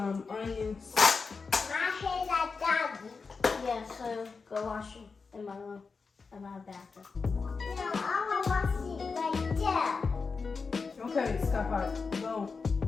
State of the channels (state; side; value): quieter; right; 4.8 dB